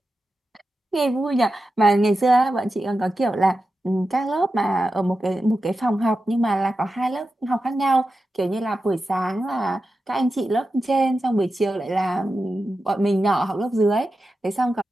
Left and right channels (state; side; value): normal; both; correlation 0.91